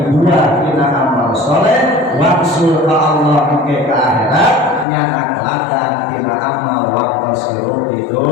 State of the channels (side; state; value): right; drops out; at 4.9 s